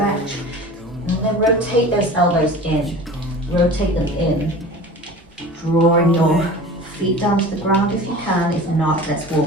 And then rotate those elbows in. Rotate them in, drawing your feet down to the ground if you can. If not, let's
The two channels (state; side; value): normal; both; correlation 0.38